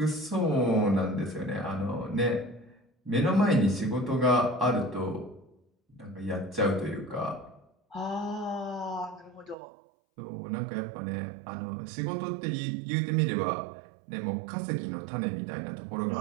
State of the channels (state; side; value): drops out; left; at 9.6 s